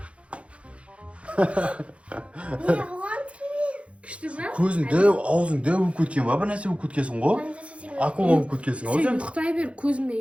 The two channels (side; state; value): left; late; 0.061 ms